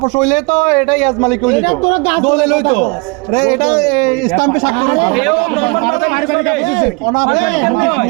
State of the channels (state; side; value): quieter; left; 29.4 dB